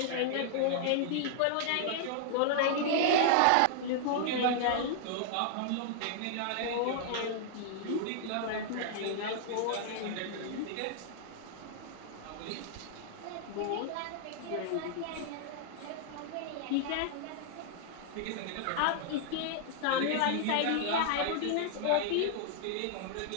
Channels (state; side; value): different; both; correlation -0.01